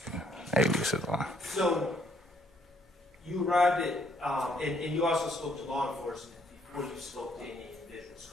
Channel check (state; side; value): normal; both; correlation 0.68